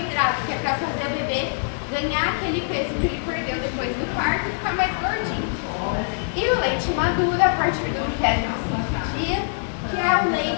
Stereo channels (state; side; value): silent; right; digital silence